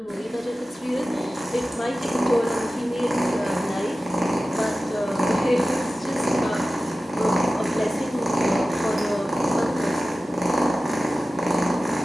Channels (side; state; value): both; normal; correlation 0.95